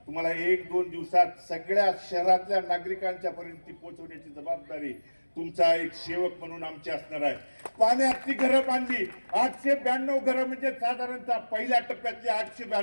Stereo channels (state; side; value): inverted; both; correlation -1.00